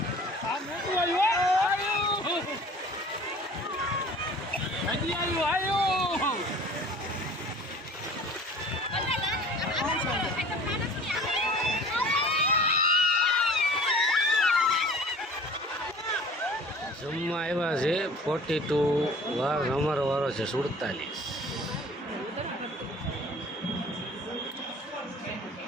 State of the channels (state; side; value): normal; both; correlation 0.46